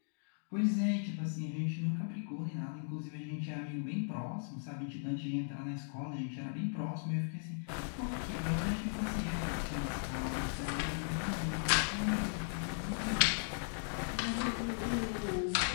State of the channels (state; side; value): silent; right; digital silence